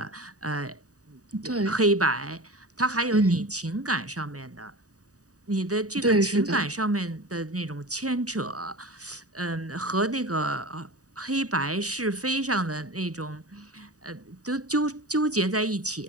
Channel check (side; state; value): left; late; 0.66 ms